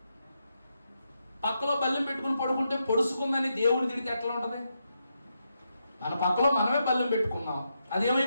పక్కలో బల్లెం పెట్టుకుని పడుకుంటే పొడుచుకుందని దేవుడు తిడితే ఎట్లా ఉంటది? మన పక్కలో మనమే బల్లెం పెట్టుకున్నాం,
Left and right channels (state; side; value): inverted; both; correlation -0.83